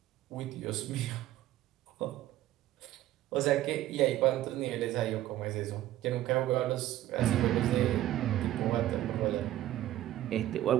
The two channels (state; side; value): quieter; left; 13.9 dB